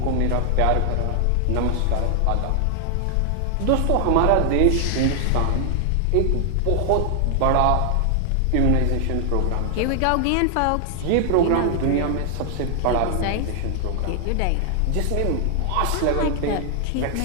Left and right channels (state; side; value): different; both; correlation 0.00